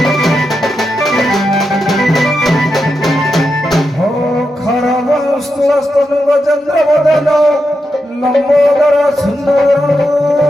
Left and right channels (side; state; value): both; normal; correlation 0.86